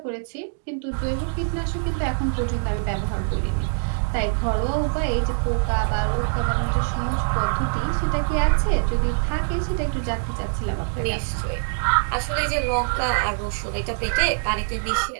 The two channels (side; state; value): left; silent; digital silence